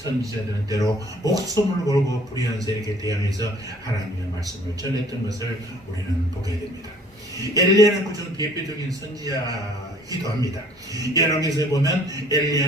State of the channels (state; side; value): normal; both; correlation 0.55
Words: 때로 목숨을 걸고 불의한 세력에 대항해서 하나님의 말씀을 전했던 것을 우리는 보게 됩니다. 엘리야는 그중 대표적인 선지자이기도 합니다. 열왕기서에 보면